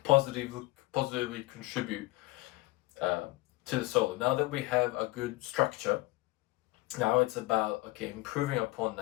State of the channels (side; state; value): right; quieter; 20.6 dB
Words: positively contribute to the solo. Now that we have a good structure, now it's about improving upon